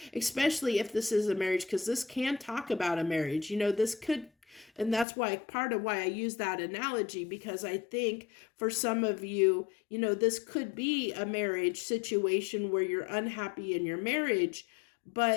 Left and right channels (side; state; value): right; drops out; at 5.1 s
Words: especially if this is a marriage, because this can talk about a marriage. This could, and that's why, part of why I use that analogy, because I think for some of you, this could be a marriage situation where you're unhappy in your marriage,